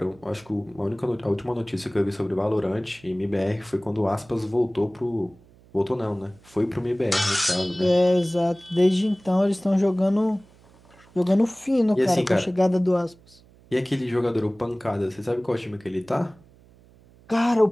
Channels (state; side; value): noise; right; hum, 27 dB below the sound